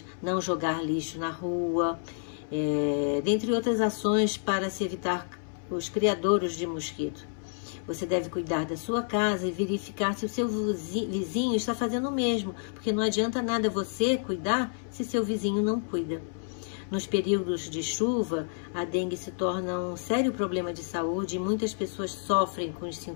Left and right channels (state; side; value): silent; right; 58 dB below the other